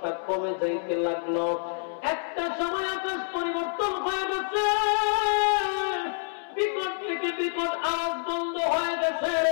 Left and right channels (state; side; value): silent; right; 60 dB below the other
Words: কমে যাইতে লাগলো। একটা সময় আকাশ পরিবর্তন হয়ে গেছে, বিকট থেকে বিকট আওয়াজ বন্ধ হয়ে গেছে।